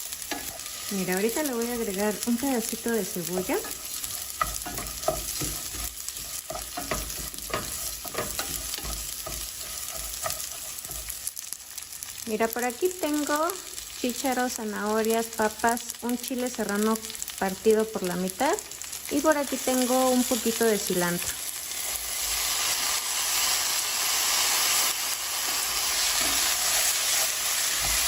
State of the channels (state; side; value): identical; both; correlation 1.00